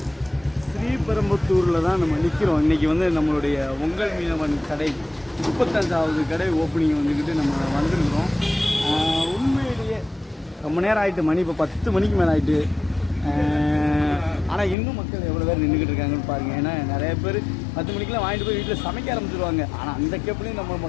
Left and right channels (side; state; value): right; drops out; at 14.8 s